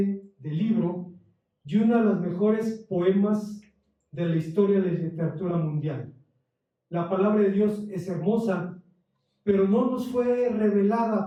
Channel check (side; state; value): both; identical; correlation 1.00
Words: del libro y uno de los mejores poemas de la historia de la literatura mundial. La palabra de Dios es hermosa, pero no nos fue